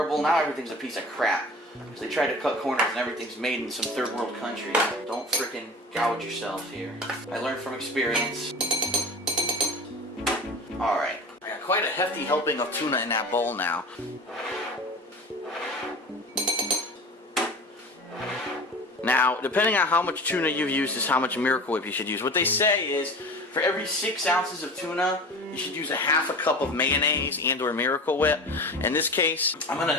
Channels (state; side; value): normal; both; correlation 0.35